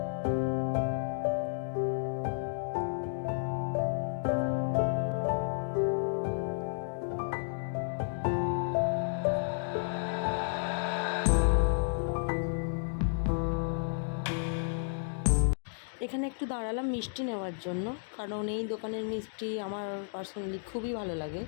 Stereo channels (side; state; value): right; silent; digital silence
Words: এখানে একটু দাঁড়ালাম মিষ্টি নেওয়ার জন্য, কারণ এই দোকানের মিষ্টি আমার পার্সোনালি খুবই ভালো লাগে